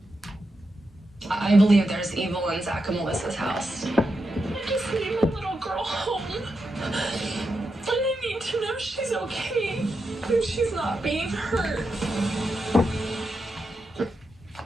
I believe there's evil in Zach and Melissa's house. I just need my little girl home. And I need to know she's okay and she's not being hurt.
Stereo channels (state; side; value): normal; both; correlation 0.86